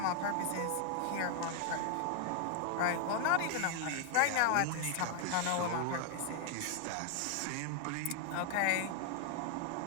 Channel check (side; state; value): both; different; correlation 0.00